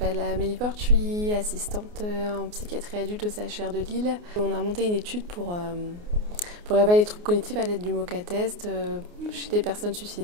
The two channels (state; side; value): late; left; 29 ms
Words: Amélie Porte, je suis assistante en psychiatrie adulte au CHR de Lille. On a monté une étude pour évaluer les troubles cognitifs à l'aide du MoCA-test chez des personnes